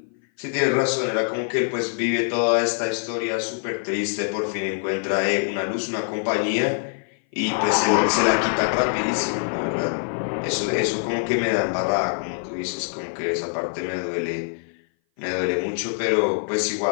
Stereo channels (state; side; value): silent; right; 58 dB below the other